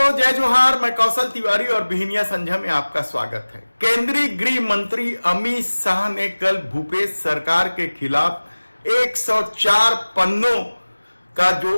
जय जोहार। मैं कौशल तिवारी और बिहनिया संध्या में आपका स्वागत है। केंद्रीय गृह मंत्री अमित शाह ने कल भूपेश सरकार के खिलाफ 104 पन्नों का जो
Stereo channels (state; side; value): inverted; both; correlation -1.00